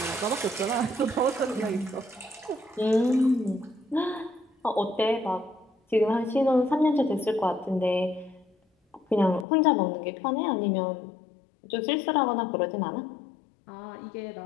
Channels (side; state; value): right; drops out; at 9.5 s